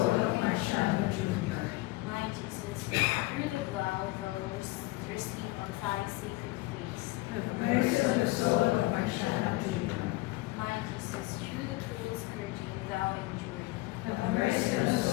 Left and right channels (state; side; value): quieter; right; 20.6 dB